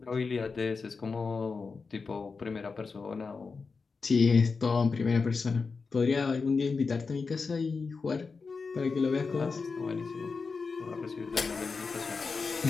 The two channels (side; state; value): right; quieter; 4.7 dB